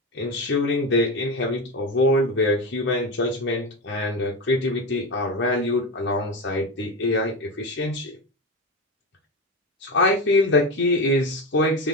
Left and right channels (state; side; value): normal; both; correlation 0.19